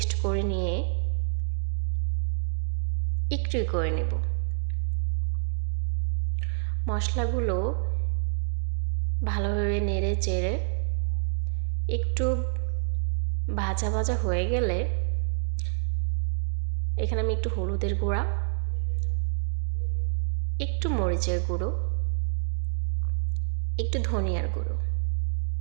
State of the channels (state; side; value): silent; left; digital silence